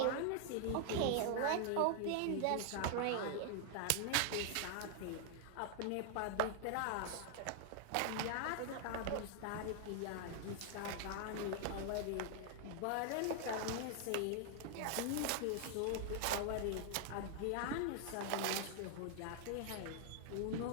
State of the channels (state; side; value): different; both; correlation 0.00